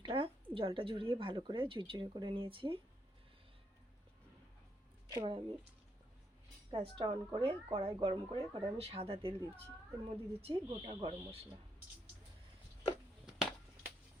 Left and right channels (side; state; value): both; normal; correlation 0.77